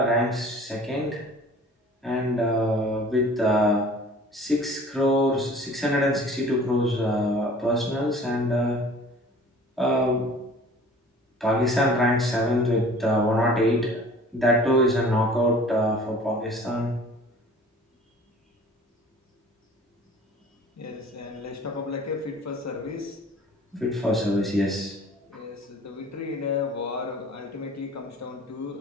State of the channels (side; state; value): both; normal; correlation 0.46